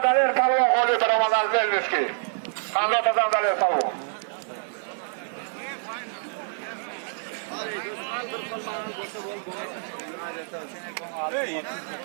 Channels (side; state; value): left; silent; digital silence